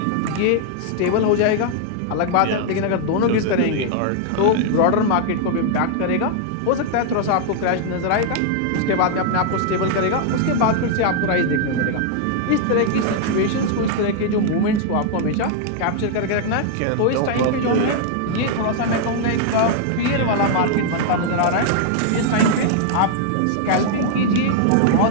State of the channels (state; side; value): different; both; correlation 0.00